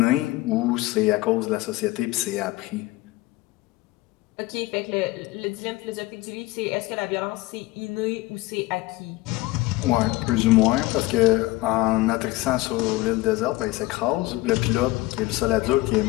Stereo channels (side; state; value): right; quieter; 19.6 dB